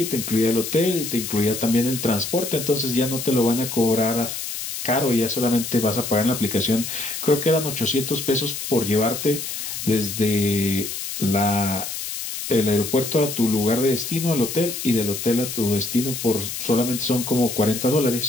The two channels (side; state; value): left; noise; hiss, 6 dB below the sound